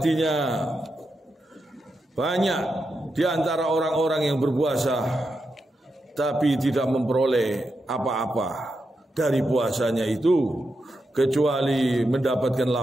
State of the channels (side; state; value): both; normal; correlation 0.86